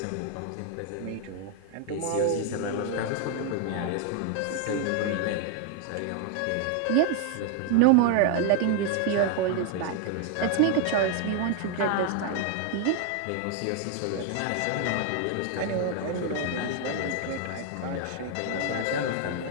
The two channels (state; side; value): different; both; correlation 0.01